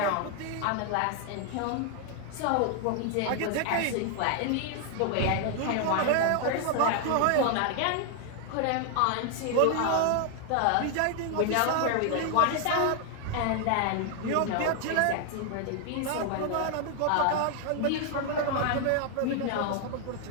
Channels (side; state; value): both; different; correlation 0.00